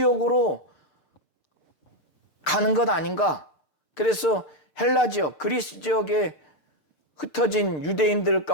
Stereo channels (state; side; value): late; right; 11 ms